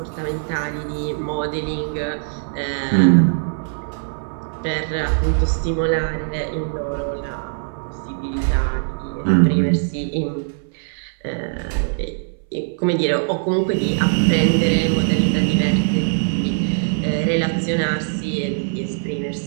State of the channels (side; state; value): left; silent; 62 dB below the other